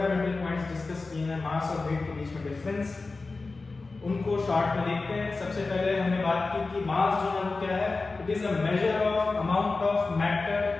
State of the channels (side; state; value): right; quieter; 3.7 dB